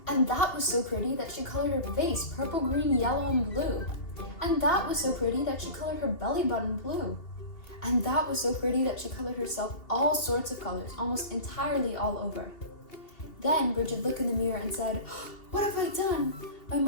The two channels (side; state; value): right; late; 2.8 ms